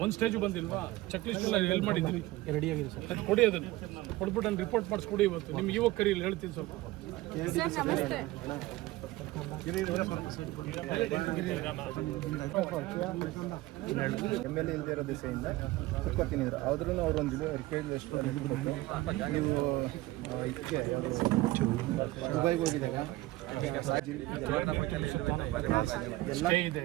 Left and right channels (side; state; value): left; quieter; 18.4 dB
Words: ಒಂದು ಸ್ಟೇಜ್ ಬಂದಿಲ್ವಾ? ಚೆಕ್ ಲಿಸ್ಟ್ ಎಲ್ಲ ಎಲ್ಲಿ ಮಾಡಿದ್ದೀರಿ? ರೆಡಿ ಆಗಿದೆ ಸರ್. ಅದು ಕೊಡಿ, ಅದನ್ನು ಕೊಟ್ಬಿಟ್ಟು ನಾನು ರಿಪೋರ್ಟ್ ಮಾಡಿಸ್ಕೊಡಿ. ಇವತ್ತು ನಿಮ್ಗೆ ಇವಾಗ ಕರೀಲಿ ಹೇಳ್ತೀನಿ ಸ್ವಲ್ಪ. MLA ಇಲ್ಲದೆ ಇರೋ ದಿಸೆಯಿಂದ ಕುತ್ಕೊತಿದ್ರು ಆದ್ರೂ ಅವ್ರೊಂದು ರಿಕ್ವೆಸ್ಟ್ ನೀವು ಇದಕ್ಕೆ ದುಬೈಗೆ ಹೋಗಿದಾಗ ಸ್ಟೇ ಇದೆ